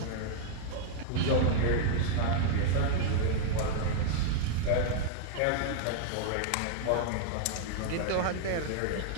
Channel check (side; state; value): both; different; correlation -0.01